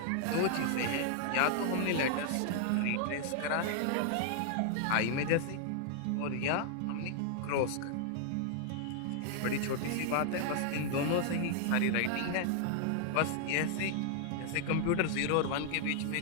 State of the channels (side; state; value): both; different; correlation 0.00